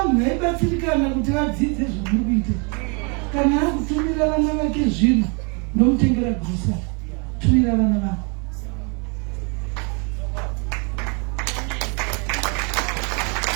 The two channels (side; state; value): left; quieter; 33.9 dB